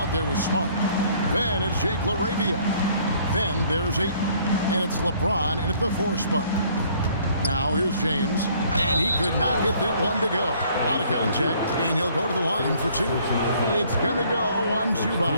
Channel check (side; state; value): both; inverted; correlation -0.60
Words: there with Smart. Then it's Jake LaRavia. Then there's Ayton. And it's LeBron in at the 4 spot. Now here's James. And he could not get that one to go. Out of contact, and he'll go to the line for 2. It's going to go on